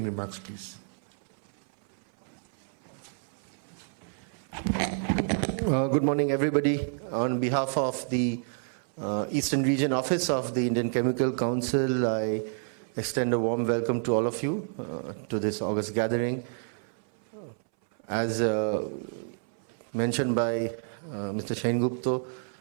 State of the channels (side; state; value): left; silent; 59 dB below the other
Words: remarks, please. Good morning, everybody. On behalf of the Eastern Region Office of the Indian Chemical Council, I extend a warm welcome to all of you to this August gathering. As mentioned by Mr. Shain Gupta,